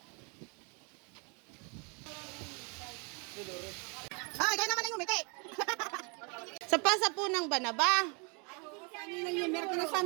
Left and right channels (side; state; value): left; quieter; 34.0 dB